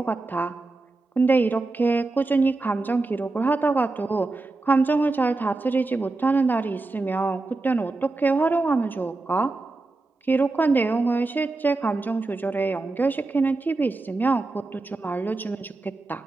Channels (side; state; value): left; quieter; 3.3 dB